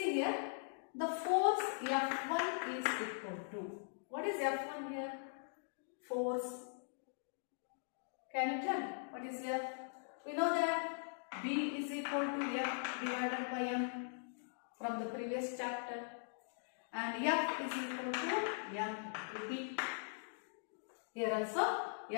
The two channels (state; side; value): silent; right; digital silence